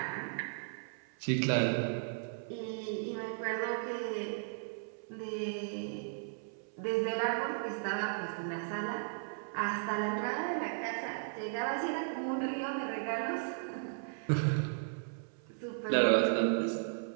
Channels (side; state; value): left; silent; 54 dB below the other